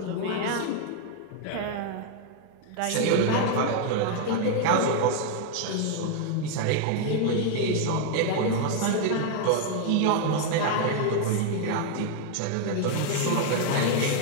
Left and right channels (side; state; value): both; different; correlation 0.00